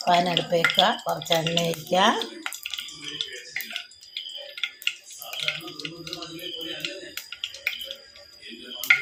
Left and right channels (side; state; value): both; identical; correlation 1.00